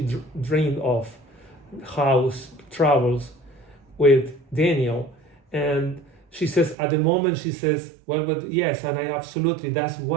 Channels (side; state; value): left; drops out; at 6.8 s